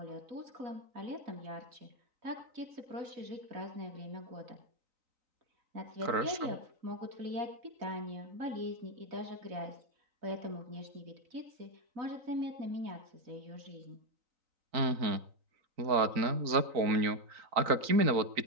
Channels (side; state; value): left; late; 3.9 ms